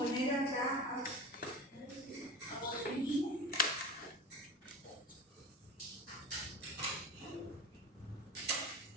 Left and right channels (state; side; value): normal; both; correlation 0.31